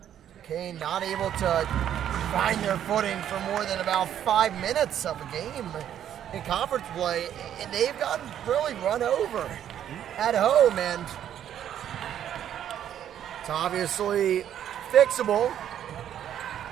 Duquesne not able to find their footing for more than about 5 minutes of a game in conference play, and they've gotten really run over at home, and it's obviously fixable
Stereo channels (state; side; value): quieter; left; 10.3 dB